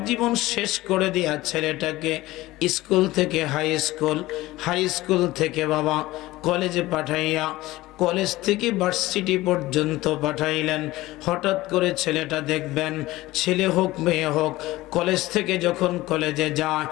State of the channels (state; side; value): quieter; right; 18.1 dB